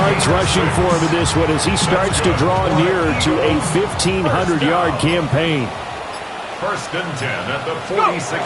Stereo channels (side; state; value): both; identical; correlation 1.00